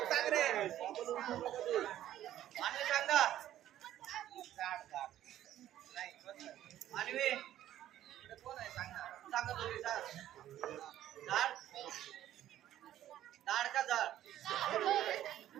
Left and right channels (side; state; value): left; quieter; 12.5 dB